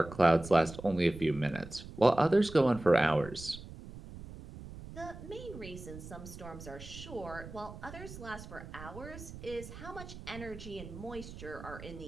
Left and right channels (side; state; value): right; noise; rumble, 13 dB below the sound